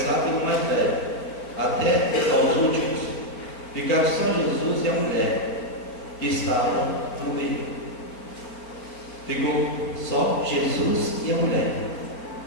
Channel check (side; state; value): right; late; 4.5 ms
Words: pelo mais velho, até aos últimos. Ficaram só Jesus e a mulher que estava no meio. Ficou só Jesus e a mulher.